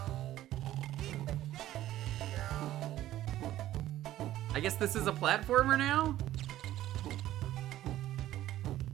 I guess this is a platformer now?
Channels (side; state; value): left; quieter; 13.8 dB